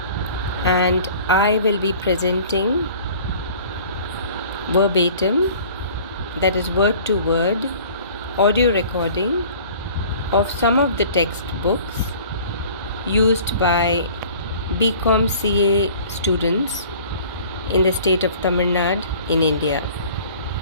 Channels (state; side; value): inverted; both; correlation -0.48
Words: and I will be presenting verbatim, that is word to word, audio recording of some of the textbooks used by BCom CA students in the state of Tamil Nadu in India.